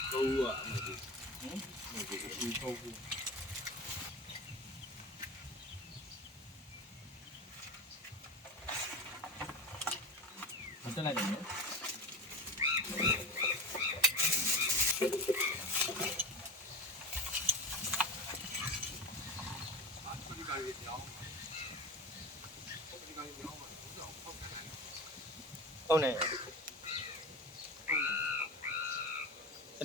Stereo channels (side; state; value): both; normal; correlation 0.26